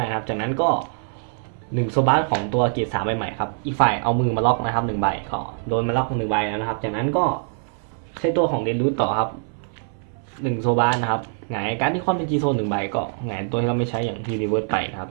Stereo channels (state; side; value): silent; left; 59 dB below the other